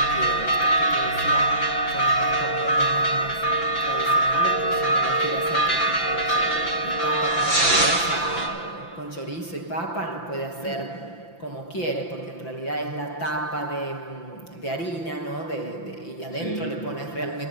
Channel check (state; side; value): late; right; 5.9 ms